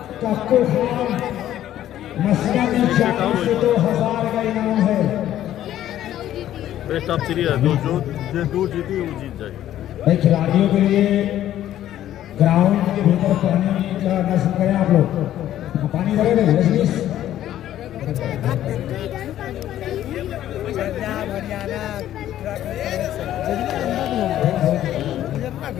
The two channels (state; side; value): quieter; right; 12.3 dB